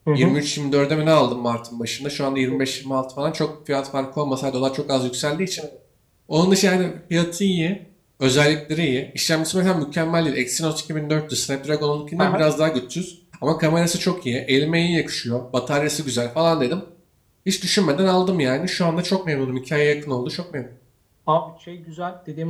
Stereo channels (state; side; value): identical; both; correlation 1.00